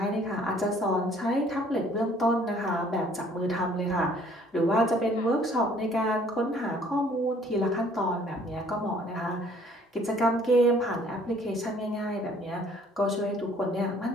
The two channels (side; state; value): both; normal; correlation 0.58